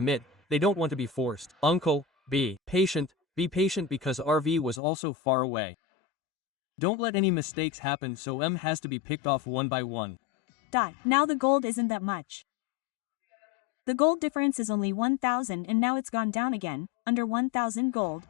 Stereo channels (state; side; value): drops out; right; at 4.8 s